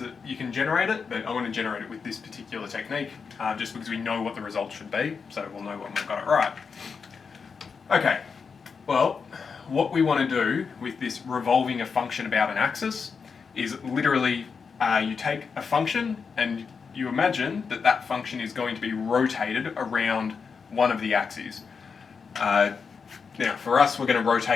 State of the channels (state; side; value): quieter; right; 5.6 dB